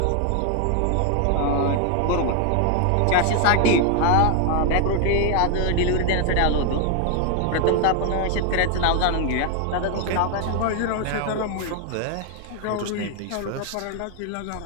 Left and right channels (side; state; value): both; different; correlation 0.00